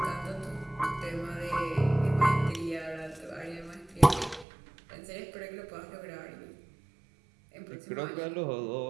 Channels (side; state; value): left; drops out; at 4.5 s